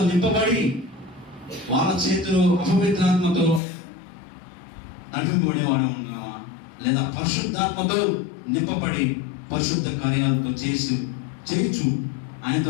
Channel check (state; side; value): drops out; right; at 3.6 s